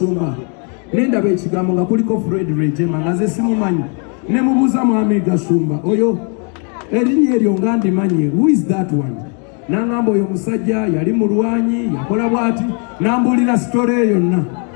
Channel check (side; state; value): right; quieter; 38.6 dB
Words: nendaba ekigambo nga kuliko Fred Rwigema nga nze simumanyi. Ne mubuuza Mwami Gashumba, oyo erinnya eryo nga ndimanyi, who is that one? N'angamba oyo musajja yali mulwanyi yakola bw'ati, n'ambuulira sitole eyo yonna.